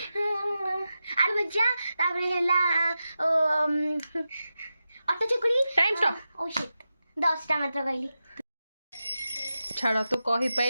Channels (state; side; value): inverted; both; correlation -0.91